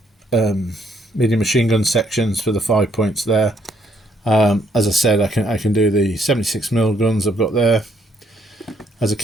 medium machine gun sections for the 5 points there. As I said, I can do the 76mm guns I've got there as a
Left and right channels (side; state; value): both; normal; correlation 0.70